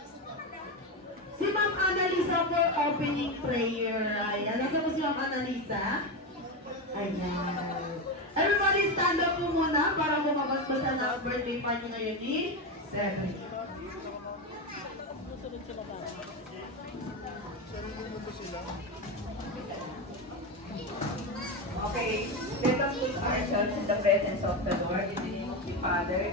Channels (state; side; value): normal; both; correlation 0.15